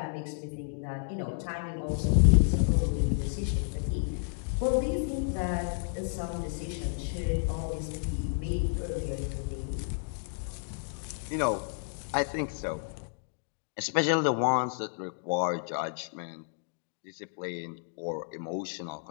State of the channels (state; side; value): silent; right; digital silence